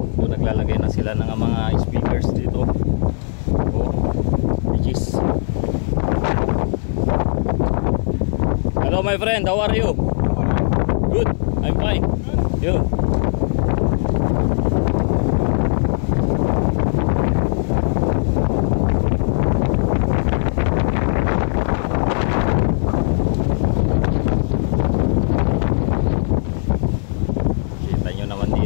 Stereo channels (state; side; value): silent; right; digital silence